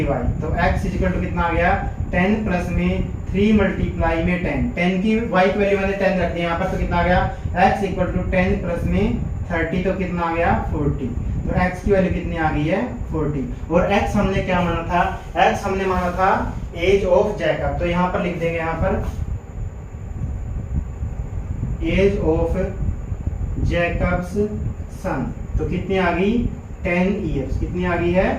तो x इज इक्वल टू कितना आ गया 10 प्लस में 3 मल्टीप्लाई में 10 की y की वैल्यू मैंने 10 रख दी यहाँ पर, तो कितना आ गया x इक्वल टू 10 प्लस में 30 तो कितना आ गया 40, तो x की वैल्यू कितनी आ गई है 40। और x हमने क्या माना था, x हमने माना था एज ऑफ जैकब, तो यहाँ पर लिख देंगे यहाँ पर एज ऑफ जैकब्स सन, तो कितनी आ गई 10 इयर्स, कितनी आ गई है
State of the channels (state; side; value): identical; both; correlation 1.00